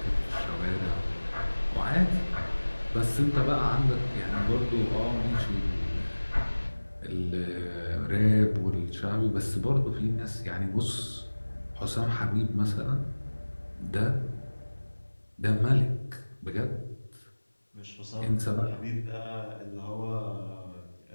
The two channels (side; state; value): both; inverted; correlation -1.00